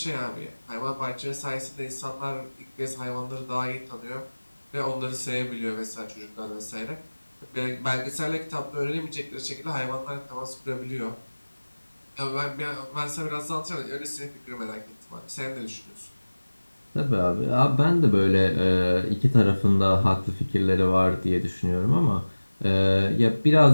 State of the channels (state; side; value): inverted; both; correlation -1.00